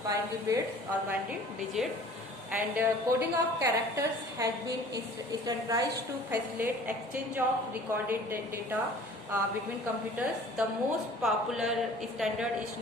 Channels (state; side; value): normal; both; correlation 0.48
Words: binary bits or binary digit, and coding of characters has been standardized to facilitate exchange of recorded data between computers. The most popular standard is